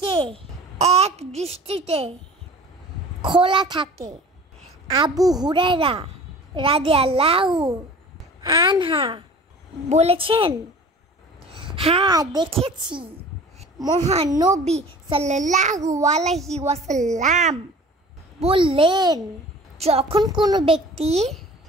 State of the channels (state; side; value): normal; both; correlation 0.43